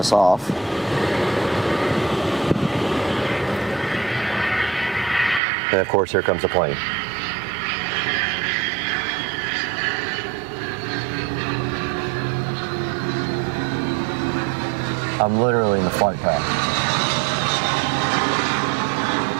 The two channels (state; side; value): drops out; left; at 5.4 s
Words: off. And of course, here comes the plane. I'm literally in the flight path.